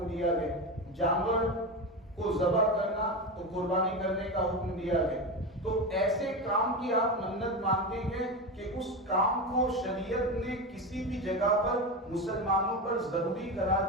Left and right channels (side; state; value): both; normal; correlation 0.19